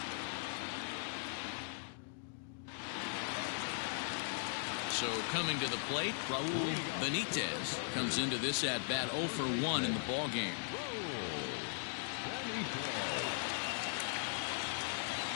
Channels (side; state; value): right; silent; digital silence